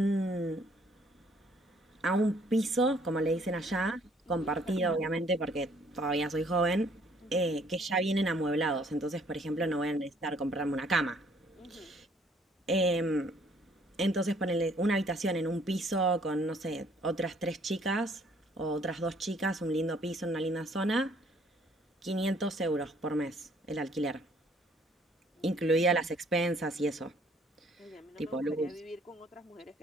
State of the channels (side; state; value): both; normal; correlation 0.63